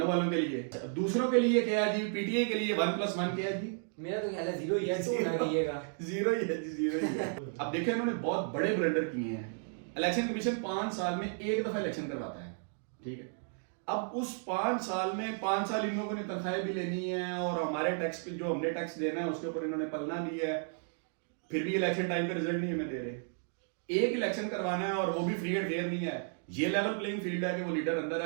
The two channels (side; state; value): left; silent; 55 dB below the other